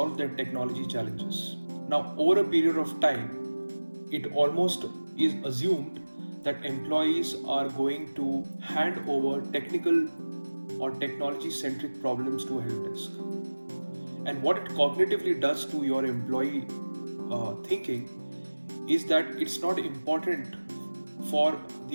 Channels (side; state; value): both; inverted; correlation -1.00